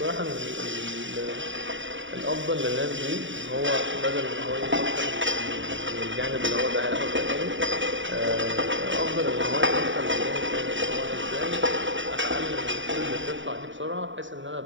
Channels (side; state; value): left; late; 0.55 ms